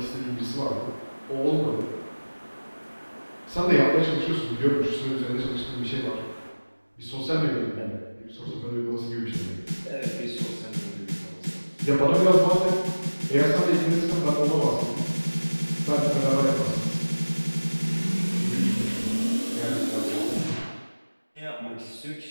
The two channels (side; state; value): both; inverted; correlation -1.00